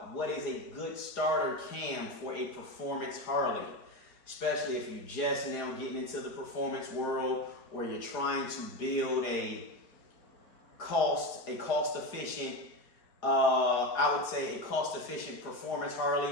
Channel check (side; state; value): right; late; 4.8 ms